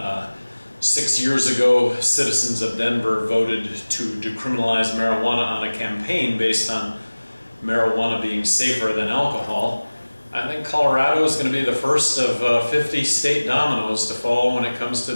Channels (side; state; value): both; inverted; correlation -1.00